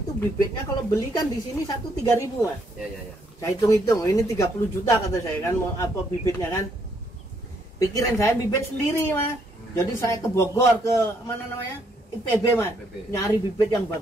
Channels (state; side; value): normal; both; correlation 0.71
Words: bibitnya kalau beli kan di sini 3.000, Mas. Iya. Saya hitung-hitung, ini 30 juta kata saya kan, mau apa bibitnya kan. Pikiran saya bibit sendiri, Mas. Jadi saya ke Bogor, ke mana namanya? IPB, Mas. Nyari bibit yang